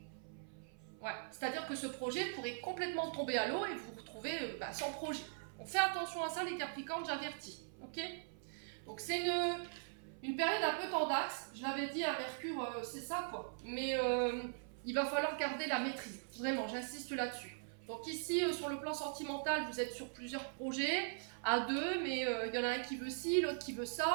Ouais. C'est-à-dire que ce projet pourrait complètement tomber à l'eau et vous vous retrouvez sans projet. On fait attention à ça, les Capricornes, j'avertis. Ok? Donc, c'est une période un peu tendax. Je l'avais dit à Mercure, c'est ça, quoi. Mais il va falloir garder la maîtrise. Vraiment, j'insiste là-dessus. Donc ici, sur le plan sentimental, vous êtes sur plusieurs projets, à deux, mais il y en a un qui veut ci, l'autre qui veut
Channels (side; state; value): left; silent; 50 dB below the other